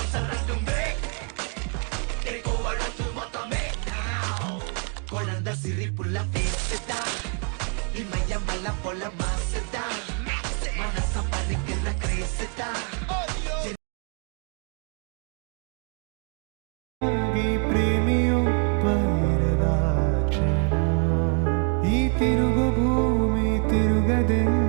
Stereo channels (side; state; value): left; quieter; 39.8 dB